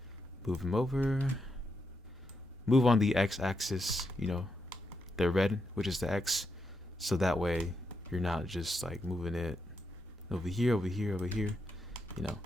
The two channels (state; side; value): normal; both; correlation 0.83